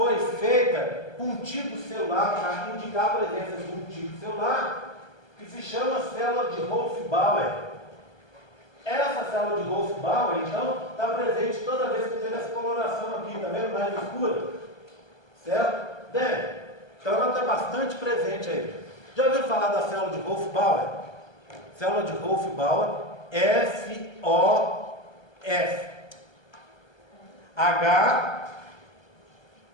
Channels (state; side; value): late; right; 1.2 ms